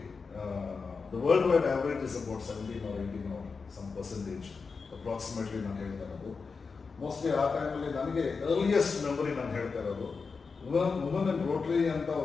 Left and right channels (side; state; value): right; quieter; 4.9 dB